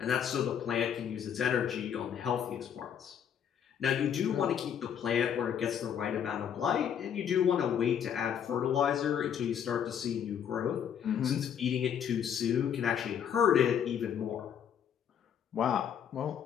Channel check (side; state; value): right; quieter; 8.6 dB